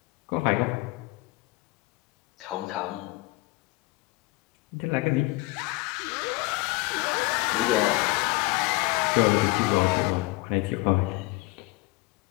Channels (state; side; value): quieter; right; 22.3 dB